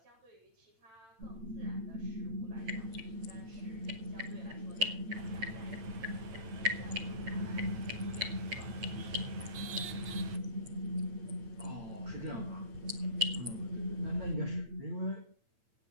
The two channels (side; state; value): left; late; 8.9 ms